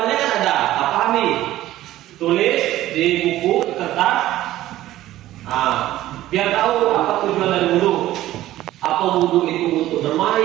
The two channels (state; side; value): quieter; left; 14.8 dB